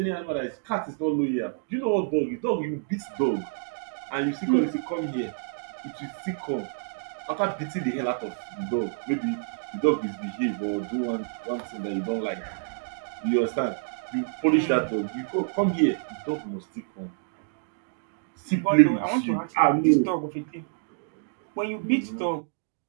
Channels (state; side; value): silent; left; digital silence